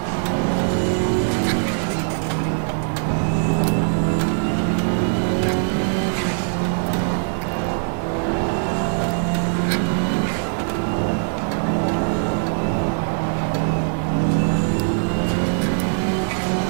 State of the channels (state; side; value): silent; left; 60 dB below the other